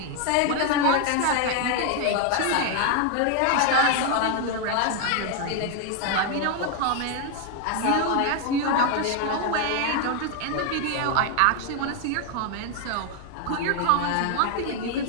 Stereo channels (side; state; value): both; different; correlation 0.01